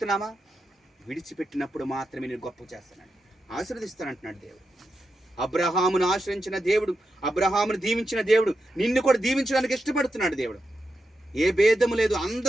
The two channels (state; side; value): normal; both; correlation 0.88